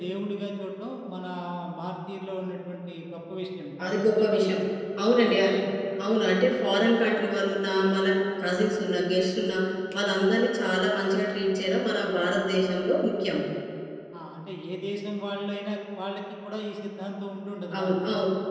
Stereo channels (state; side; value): identical; both; correlation 1.00